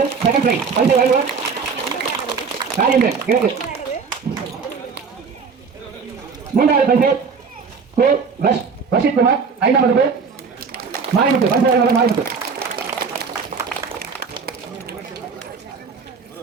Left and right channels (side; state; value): left; quieter; 5.4 dB